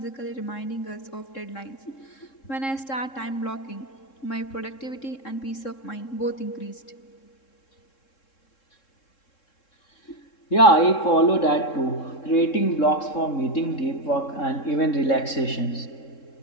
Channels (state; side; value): late; right; 3.7 ms